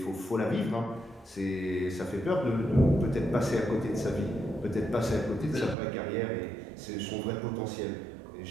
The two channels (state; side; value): drops out; left; at 5.8 s